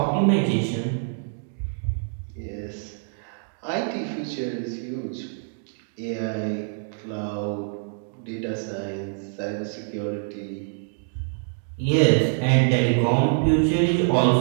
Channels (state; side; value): silent; left; digital silence